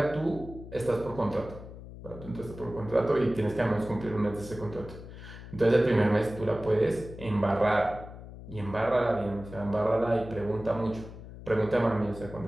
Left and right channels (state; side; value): noise; left; hum, 14 dB below the sound